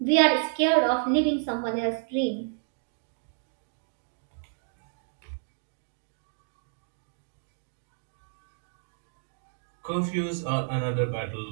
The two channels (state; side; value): silent; left; digital silence